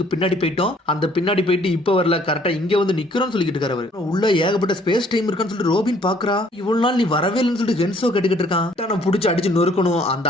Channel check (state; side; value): normal; both; correlation 0.61